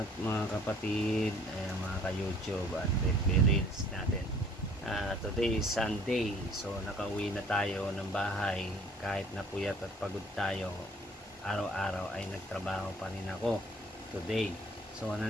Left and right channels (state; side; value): normal; both; correlation 0.56